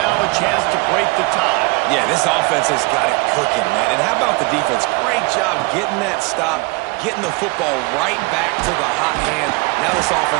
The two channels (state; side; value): quieter; left; 26.8 dB